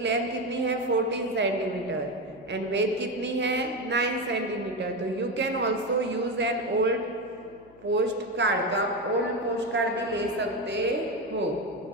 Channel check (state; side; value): noise; left; hum, 27 dB below the sound